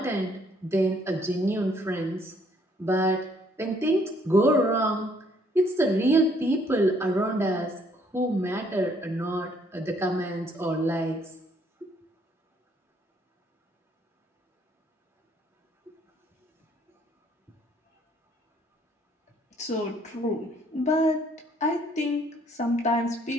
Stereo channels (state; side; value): normal; both; correlation 0.65